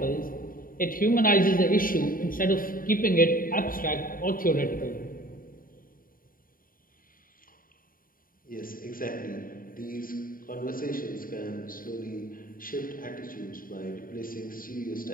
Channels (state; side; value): late; right; 0.41 ms